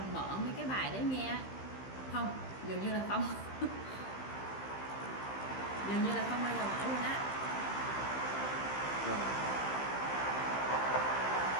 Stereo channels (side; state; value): right; late; 15 ms